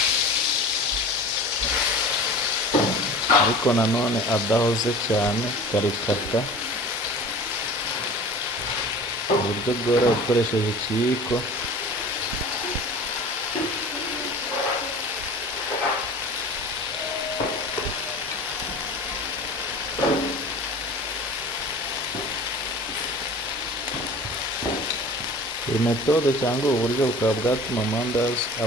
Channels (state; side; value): normal; both; correlation 0.40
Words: ariko nanone adahoze cyane, ukarikata mu buryo bworoshye ukoresheje ikiyiko. Iyi metode cyangwa ubu buryo bukaba bwatuma amandazi